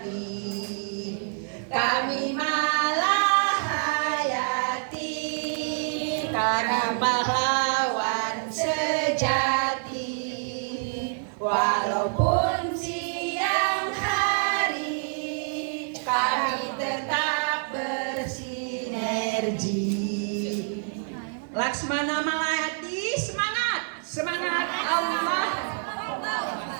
Kami Malahayati, kami pahlawan sejati. Walaupun siang hari, kami tetap bersinergi. Laksmana Malahayati, semangat, semangat Allah.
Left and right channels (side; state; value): left; silent; 60 dB below the other